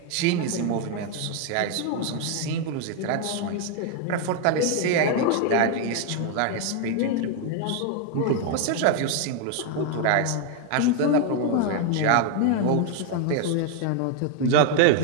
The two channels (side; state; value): both; different; correlation 0.01